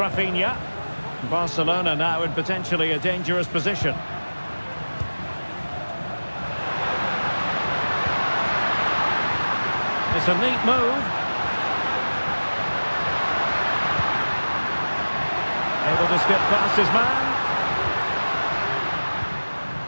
Barcelona now in potentially a dangerous position. It's a neat move. Able to skip past his man.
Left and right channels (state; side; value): inverted; both; correlation -1.00